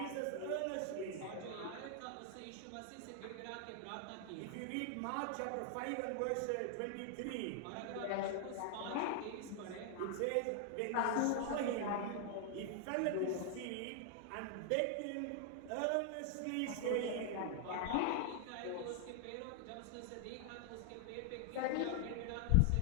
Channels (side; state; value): both; different; correlation 0.00